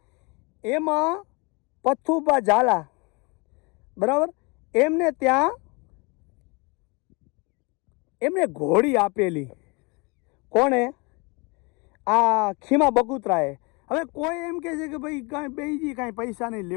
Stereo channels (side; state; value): right; quieter; 29.0 dB